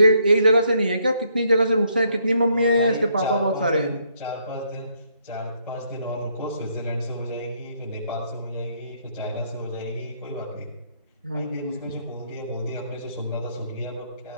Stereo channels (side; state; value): both; inverted; correlation -0.72